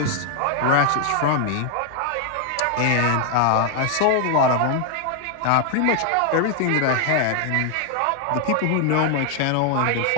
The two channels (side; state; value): both; different; correlation 0.00